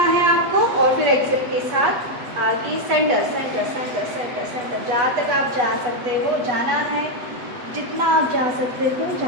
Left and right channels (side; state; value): left; late; 8.2 ms